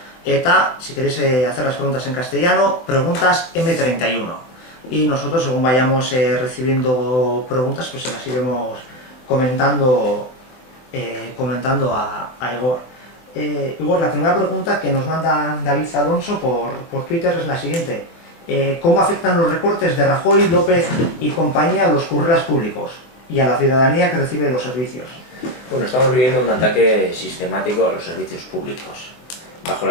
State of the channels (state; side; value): late; right; 23 ms